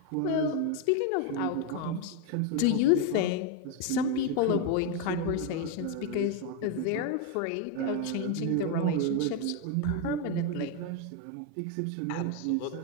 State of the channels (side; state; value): both; different; correlation 0.02